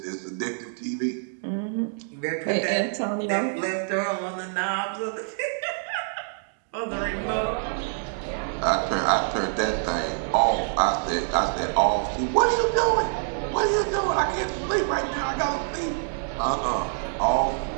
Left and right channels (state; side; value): silent; left; digital silence